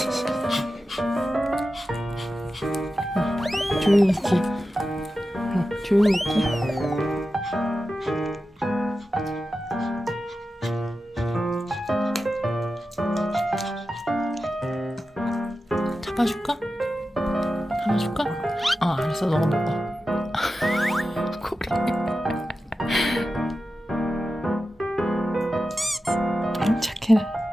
조용히 있기. 조용히 있기. 잡아줄까? 잡아줄까? 알았어. 너가 먹어. 고리. 아이 착해라.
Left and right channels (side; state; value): both; normal; correlation 0.92